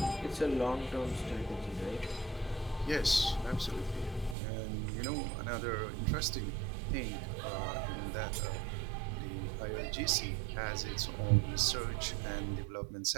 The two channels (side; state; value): left; drops out; at 4.4 s